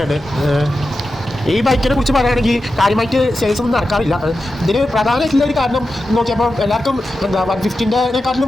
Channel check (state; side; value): normal; both; correlation 0.91